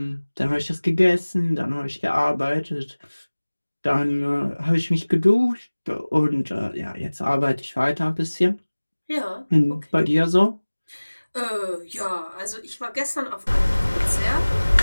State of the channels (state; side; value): inverted; both; correlation -1.00